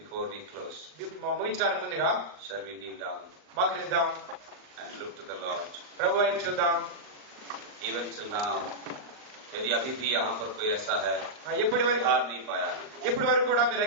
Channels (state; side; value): late; left; 39 ms